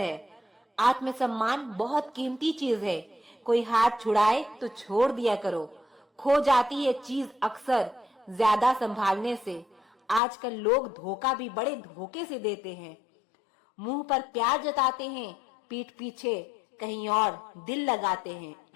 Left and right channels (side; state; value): right; drops out; at 10.2 s